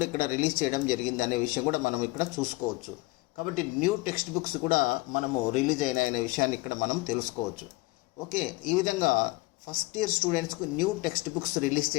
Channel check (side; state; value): right; quieter; 22.1 dB